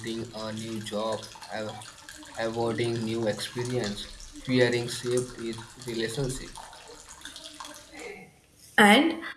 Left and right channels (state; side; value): identical; both; correlation 1.00